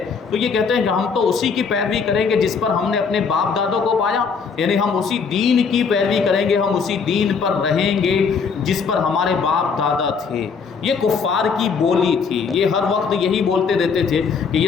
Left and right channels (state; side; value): quieter; right; 5.6 dB